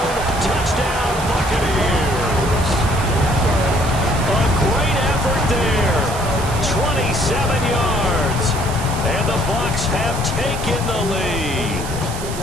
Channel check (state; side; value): noise; right; hiss, 12 dB below the sound